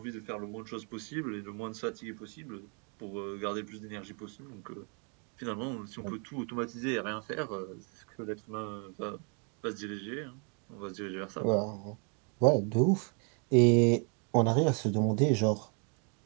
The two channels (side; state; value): left; quieter; 37.7 dB